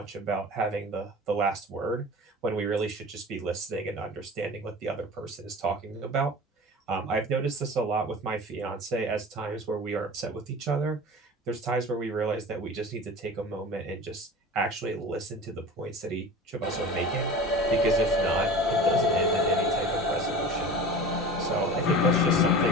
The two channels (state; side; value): normal; both; correlation 0.36